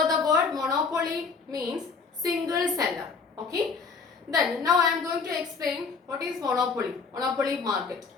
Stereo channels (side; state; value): right; quieter; 4.9 dB